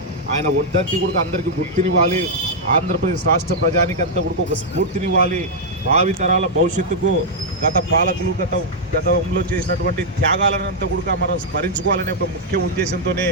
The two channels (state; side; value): normal; both; correlation -0.05